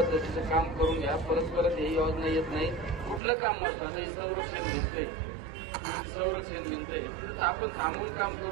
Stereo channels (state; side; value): drops out; left; at 3.2 s